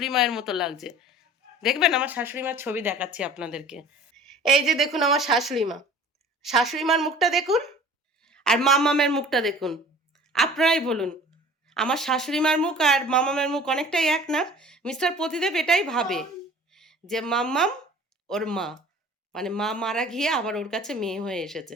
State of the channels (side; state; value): both; normal; correlation 0.46